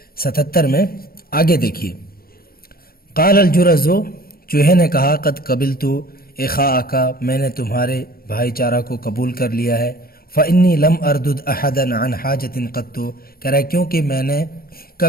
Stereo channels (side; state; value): right; late; 0.43 ms